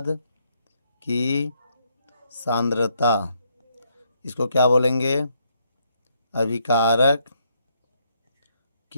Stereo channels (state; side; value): inverted; both; correlation -0.74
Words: की सांद्रता, इसको क्या बोलेंगे, अभिकारक